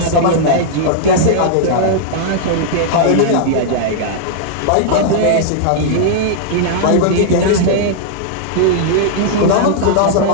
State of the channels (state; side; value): different; both; correlation -0.01